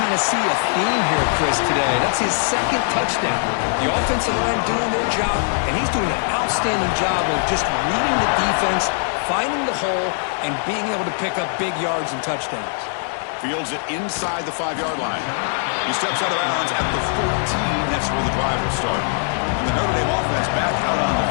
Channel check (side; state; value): right; silent; digital silence